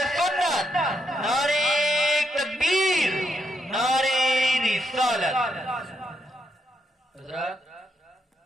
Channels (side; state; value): both; normal; correlation 0.80